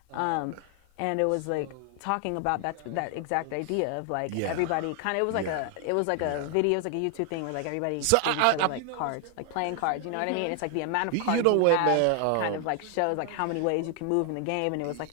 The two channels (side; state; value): both; different; correlation 0.00